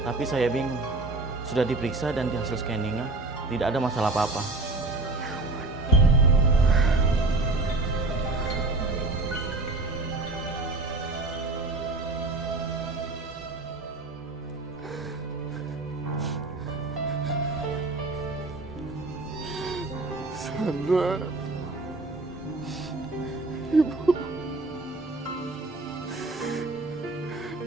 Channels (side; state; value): left; quieter; 3.2 dB